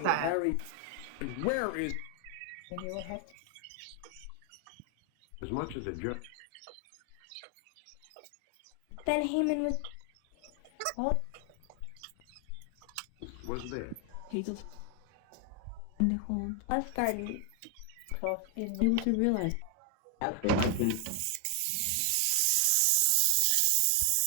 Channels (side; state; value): both; different; correlation 0.00